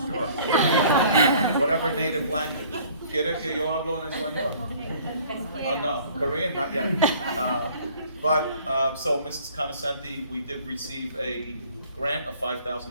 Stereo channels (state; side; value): inverted; both; correlation -0.53